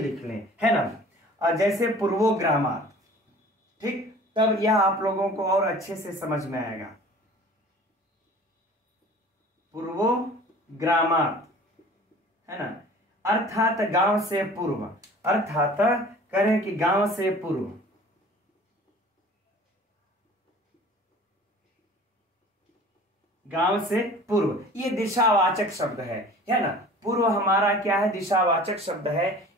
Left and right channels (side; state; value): both; normal; correlation 0.45